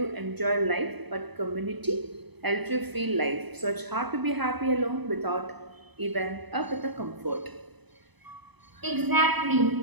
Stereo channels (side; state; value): left; late; 0.99 ms